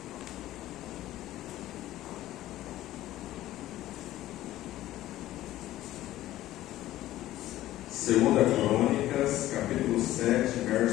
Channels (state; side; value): quieter; right; 14.7 dB